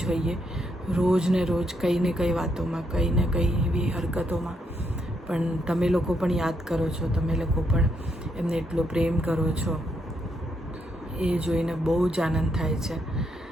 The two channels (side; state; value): both; normal; correlation 0.77